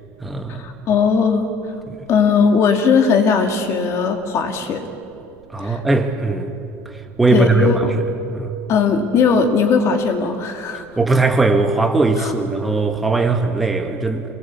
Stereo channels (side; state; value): right; noise; rumble, 30 dB below the sound